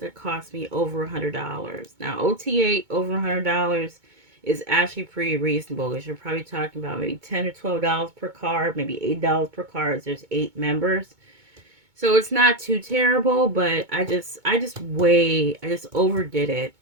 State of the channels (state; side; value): late; left; 2.2 ms